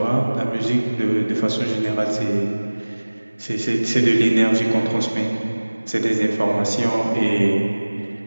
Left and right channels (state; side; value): inverted; both; correlation -1.00